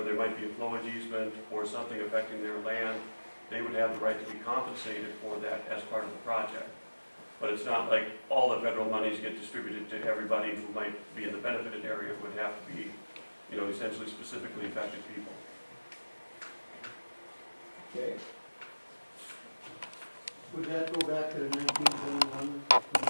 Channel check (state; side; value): inverted; both; correlation -1.00